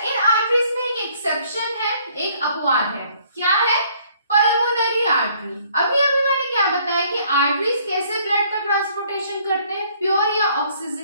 आर्टरीज में एक एक्सेप्शन है, एक अपवाद है। क्या है? Pulmonary artery. अभी मैंने क्या बताया कि आर्टरीज कैसे ब्लड का ट्रांसपोर्टेशन करते हैं? प्योर या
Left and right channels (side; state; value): both; inverted; correlation -0.62